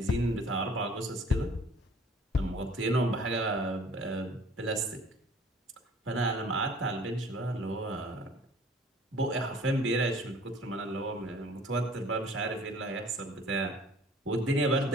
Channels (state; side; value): normal; both; correlation 0.51